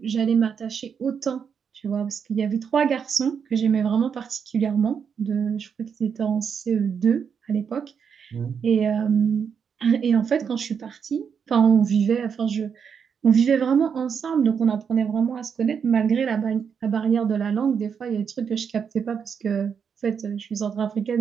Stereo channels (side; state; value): left; quieter; 6.9 dB